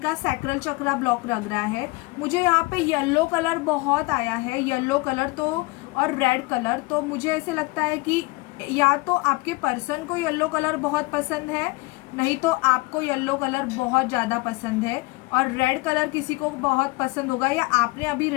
सैक्रल चक्रा ब्लॉक लग रहा है। मुझे यहाँ पे येलो कलर बहुत आया है, येलो कलर तो और रेड कलर, तो मुझे ऐसे लगता है कि या तो आपके पर्सन को येलो कलर बहुत पसंद है, नहीं तो आपको येलो कलर बहुत ज़्यादा पसंद है, और रेड कलर किसी को बहुत पसंद होगा, या आपने अभी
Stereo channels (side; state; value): right; quieter; 23.7 dB